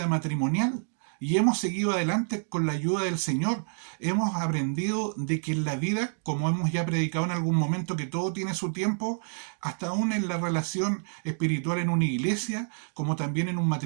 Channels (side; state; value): left; silent; digital silence